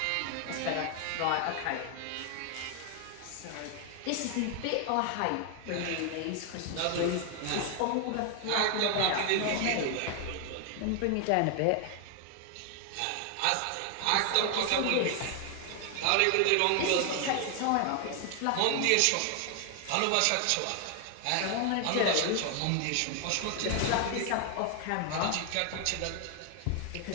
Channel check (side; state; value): both; different; correlation 0.00